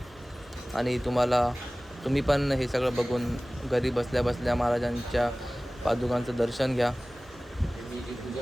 आणि तुम्ही पण हे सगळं बघून घरी बसल्या बसल्या महाराजांच्या पादुकांचं दर्शन घ्या.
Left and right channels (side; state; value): both; normal; correlation 0.98